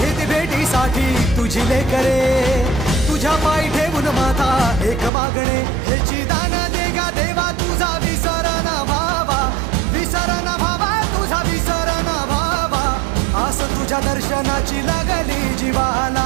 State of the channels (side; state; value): left; drops out; at 5.1 s